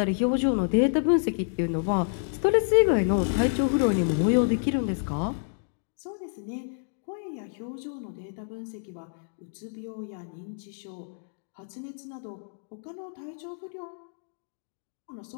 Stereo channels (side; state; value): right; silent; digital silence